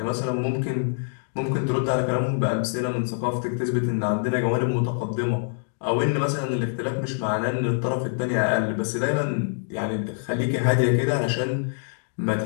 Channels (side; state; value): right; silent; digital silence